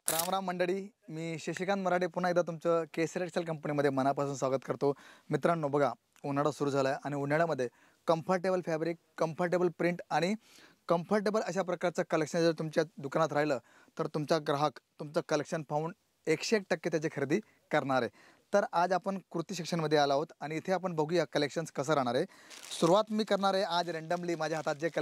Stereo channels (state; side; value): identical; both; correlation 1.00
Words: राम राम मंडळी, मी शशिकांत मराठे पुन्हा एकदा तुमचं केसरी टेक्सटाईल कंपनीमध्ये मनापासून स्वागत करतो. मित्रांनो बघा, उन्हाळा सुरू झाला आहे आणि उन्हाळ्यामध्ये कम्फर्टेबल फॅब्रिक, कम्फर्टेबल प्रिंट आणि कम्फर्टेबल अशा प्रकारचं कलेक्शन जर तुमच्या दुकानात राहिलं तर तुमचा ग्राहक तुमचं कलेक्शन पाहून 101% त्याची खरेदी करणार आहे. तर आज आपण कुर्ती सेक्शनमध्ये आलो आहोत आणि इथे आपण बघूया कलेक्शन्स कसं राहणार आहे. सुरुवात मी करणार आहे आज रँडमली. माझ्या हातात जे